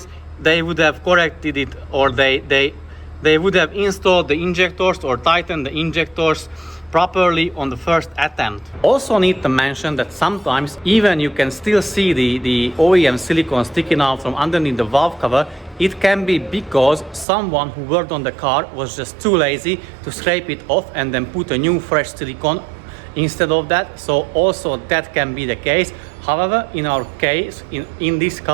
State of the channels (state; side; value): drops out; left; at 17.2 s